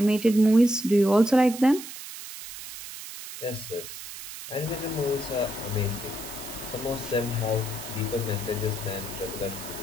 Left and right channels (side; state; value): right; noise; hiss, 11 dB below the sound